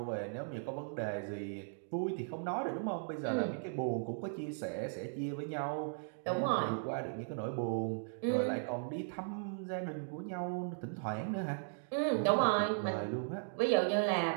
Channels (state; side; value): silent; left; digital silence